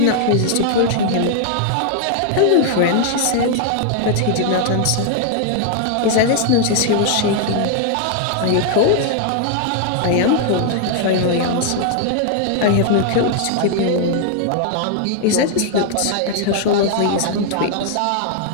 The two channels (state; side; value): different; both; correlation 0.00